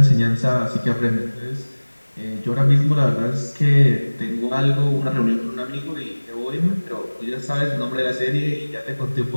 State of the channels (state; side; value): inverted; both; correlation -1.00